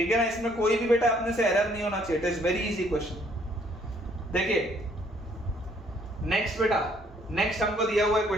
है ना, इसमें कोई भी बेटा अपने से एरर नहीं होना चाहिए, it is very easy question. देखिए नेक्स्ट हमको दिया हुआ है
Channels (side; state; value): both; normal; correlation 0.65